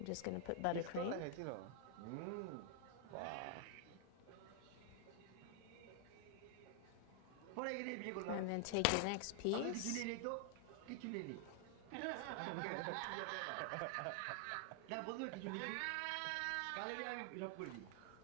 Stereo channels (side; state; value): both; different; correlation 0.00